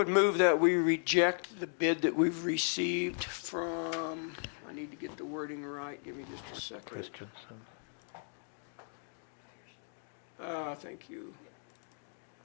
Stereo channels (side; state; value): right; silent; 54 dB below the other